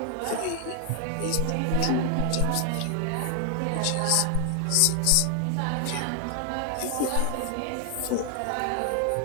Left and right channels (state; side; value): different; both; correlation 0.00